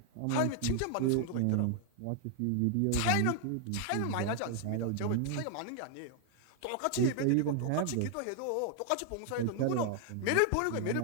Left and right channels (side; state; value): both; different; correlation 0.00